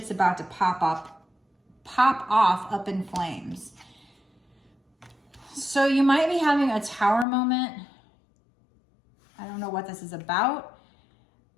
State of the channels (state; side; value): drops out; right; at 7.2 s